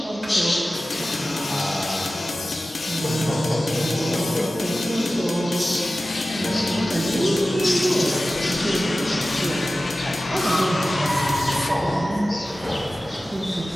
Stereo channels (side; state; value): both; normal; correlation 0.96